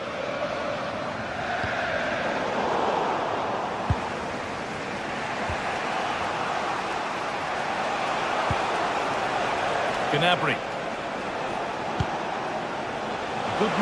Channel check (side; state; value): both; identical; correlation 1.00